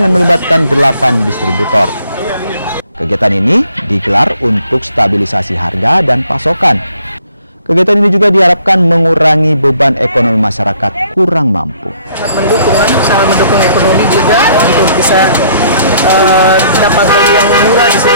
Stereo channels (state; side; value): inverted; both; correlation -0.63